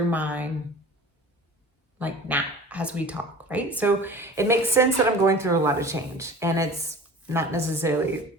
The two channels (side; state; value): both; normal; correlation 0.40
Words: mine like now as we talk, right? So it makes sense that I'm going through a lot of change, and it's not necessarily